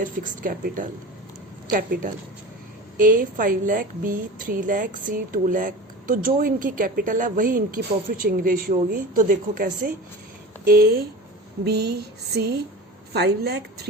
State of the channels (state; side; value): normal; both; correlation 0.32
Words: fixed capital. A 5 lakh, B 3 lakh, C 2 lakh. तो जो इनकी capital है वही इनकी profit sharing ratio होगी. तो देखो कैसे A, B, C 5 lakh